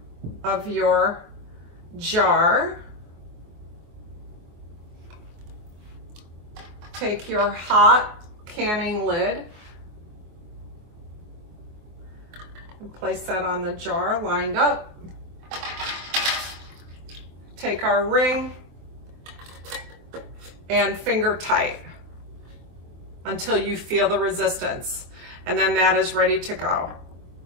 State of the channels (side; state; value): left; late; 24 ms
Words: of your jar. Take your hot canning lid and place that on the jar lined up. Take our ring and finger tight until you feel the resistance, and then that is ready to go.